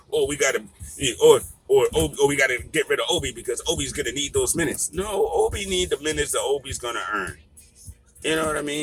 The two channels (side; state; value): both; identical; correlation 1.00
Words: or we got to, or we got to get rid of Obi, because Obi's gonna need those minutes. No, Obi need the minutes that Obi's gonna earn. You know what I